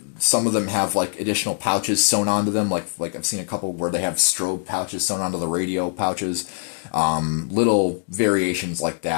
some of them have like additional pouches sewn onto them. Like I've seen a couple where they have strobe pouches sewn onto the radio pouches. Little variations like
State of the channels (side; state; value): right; silent; digital silence